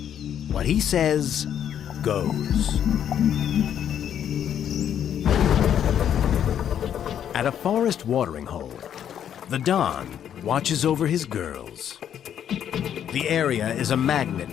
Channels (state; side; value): quieter; right; 9.5 dB